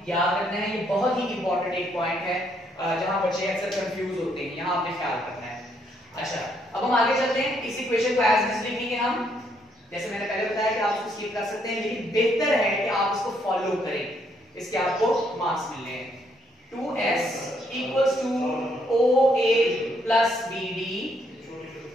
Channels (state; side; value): normal; both; correlation 0.72